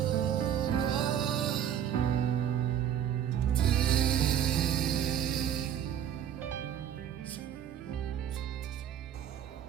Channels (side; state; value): left; quieter; 9.6 dB